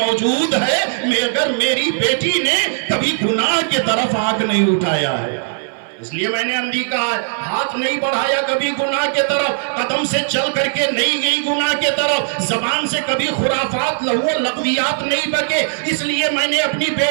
ہے، مگر میری بیٹی نے کبھی گناہ کے طرف آنکھ نہیں اٹھایا ہے، اس لیے میں نے اندھی کہا ہے، ہاتھ نہیں بڑھایا کبھی گناہ کے طرف، قدم سے چل کر کے نہیں گئی گناہ کے طرف، زبان سے کبھی خرافات لہو لغویات نہیں بکے، اس لیے میں نے اپنی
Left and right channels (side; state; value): left; silent; 58 dB below the other